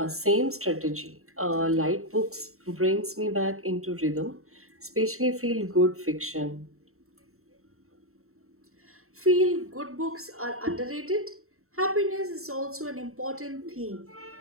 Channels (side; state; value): left; late; 0.63 ms